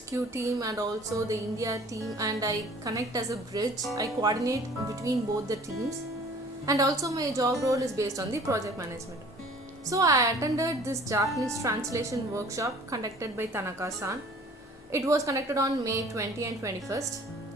team and also the India team, and I connect as a bridge. I coordinate between both the teams, and also my job role is based on the project management. So I attended this Japanese translation workshop conducted by Tanaka-san. It was conducted on May 20 and 21st.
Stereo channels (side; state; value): both; normal; correlation 0.50